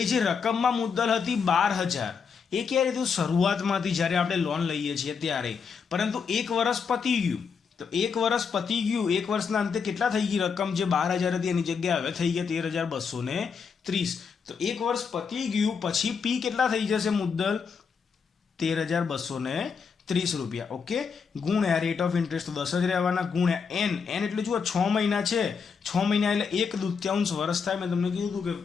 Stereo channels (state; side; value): quieter; right; 5.9 dB